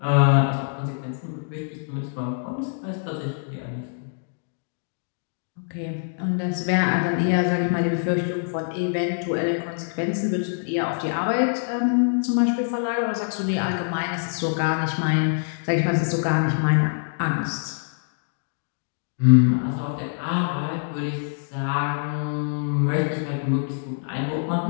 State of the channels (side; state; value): right; silent; digital silence